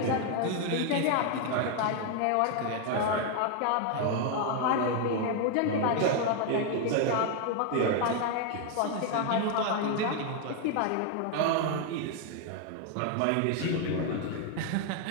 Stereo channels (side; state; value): both; different; correlation 0.00